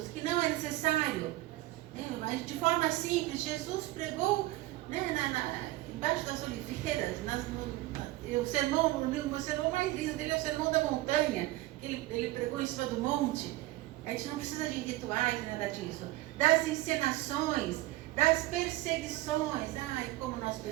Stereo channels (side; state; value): left; quieter; 17.8 dB